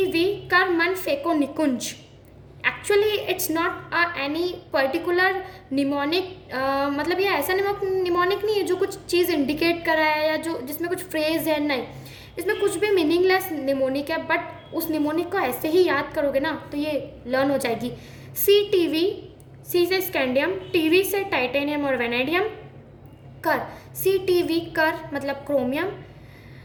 कर मन phaco Nikunj, actually it's not any particular mnemonic, मतलब ये ऐसा निमोनिक नहीं है जो कुछ चीज़ इंडिकेट कर रहा है या जो जिसमें कुछ फ्रेज है, नहीं, इसमें कुछ भी मीनिंगलेस निमोनिक है, बट उस निमोनिक को ऐसे ही याद करोगे ना तो ये लर्न हो जाएगी। CTV, सी से स्कैंडियम, TV से टाइटेनियम और वेनेडियम, कर CTV कर मतलब क्रोमियम,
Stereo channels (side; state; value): both; identical; correlation 1.00